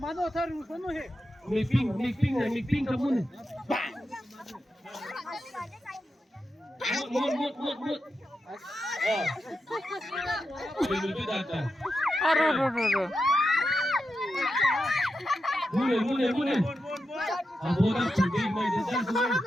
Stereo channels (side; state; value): both; normal; correlation 0.88